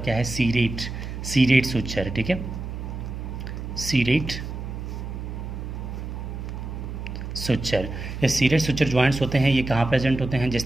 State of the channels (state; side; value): noise; right; hum, 7 dB below the sound